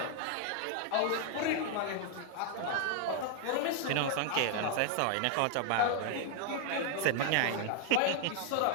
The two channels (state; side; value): different; both; correlation 0.00